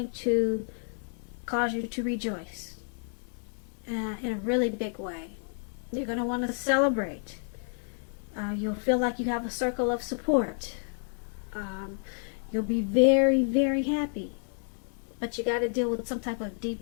to cause you to rejoice in a really big way. You're going to want to celebrate. You'll feel like you have a circle of support. You'll be very, very happy. But you got to deal with some type of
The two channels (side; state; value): right; silent; 58 dB below the other